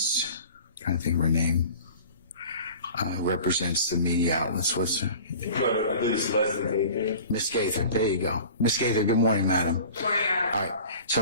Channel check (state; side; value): inverted; both; correlation -0.42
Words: I'm trying to think of her name, represents the media outlets. What's her? I believe it's Leslie Gaither. Miss Gaither, there you go. Miss Gaither, good morning, madam. Good morning, Your Honor. All right, so